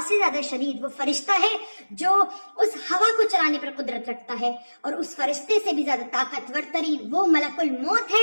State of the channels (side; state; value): both; inverted; correlation -1.00